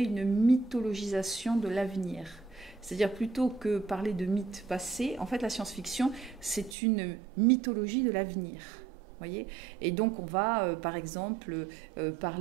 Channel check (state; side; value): drops out; left; at 6.8 s